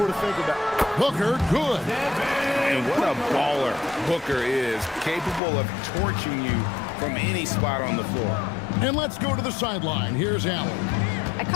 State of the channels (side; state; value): right; drops out; at 5.4 s